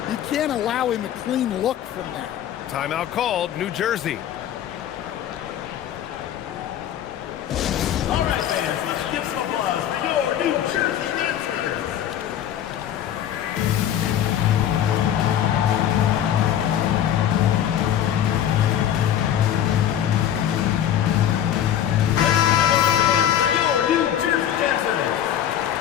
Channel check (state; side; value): quieter; right; 10.5 dB